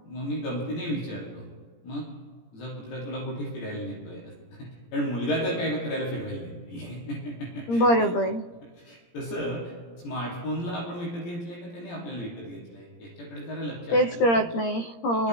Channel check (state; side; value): late; right; 17 ms